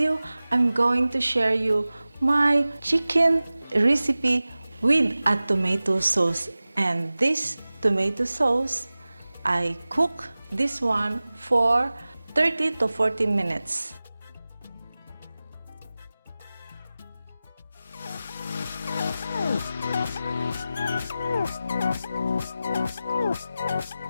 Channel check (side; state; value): both; inverted; correlation -0.96